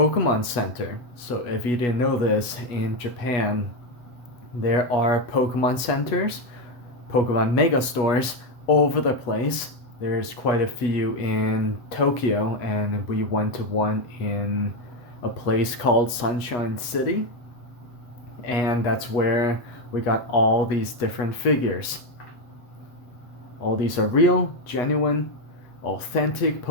Center. So if you didn't know this, in Japan, there are Pokemon centers, Pokemon mega stores all over the place. There's quite a few in Tokyo, and we went to one in a place called Sunshine City, and that's where we got all these different figures. All these are real, genuine, authentic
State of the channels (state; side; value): late; right; 8.2 ms